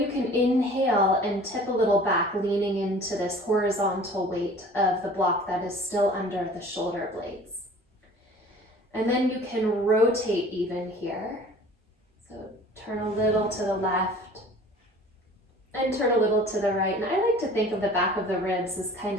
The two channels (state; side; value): normal; both; correlation 0.46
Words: can inhale and tip a little back, leaning into this horizontal weight of the block that is still under the shoulder blades. And then you can rotate even here. So turn a little to the left and turn a little to the right. And I like to think of the back of the ribs as kind